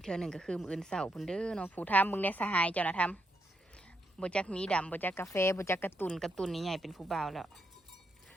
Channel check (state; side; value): normal; both; correlation 0.80